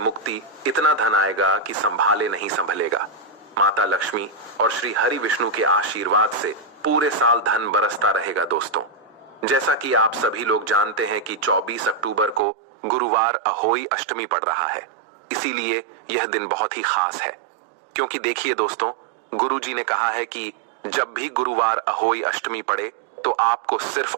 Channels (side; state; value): left; drops out; at 12.5 s